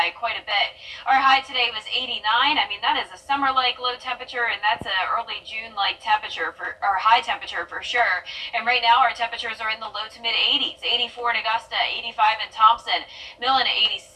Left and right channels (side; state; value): both; identical; correlation 1.00